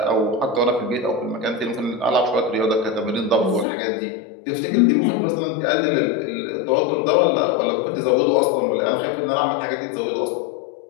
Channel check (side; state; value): right; drops out; at 3.7 s